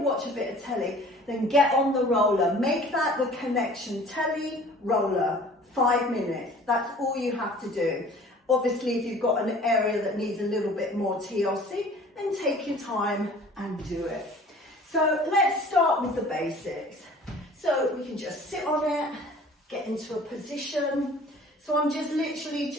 watch a bit of telly, then get on the roller. Make that the connection. Telly, roller, 5 minutes. That's all you have to do. Obviously, if you've got an area that needs a little bit more TLC, then take your time and do it. So let's start with the basics. So we can just sit on it, get into a position. So I'm just literally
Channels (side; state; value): both; normal; correlation 0.48